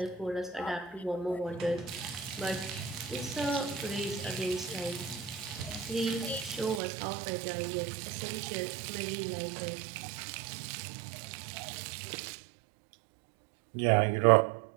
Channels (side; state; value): left; drops out; at 6.8 s